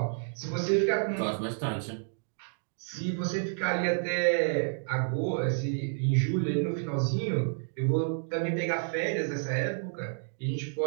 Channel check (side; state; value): left; silent; digital silence